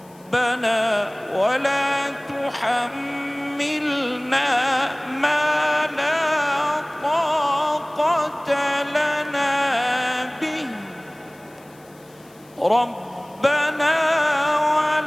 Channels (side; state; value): left; noise; hiss, 28 dB below the sound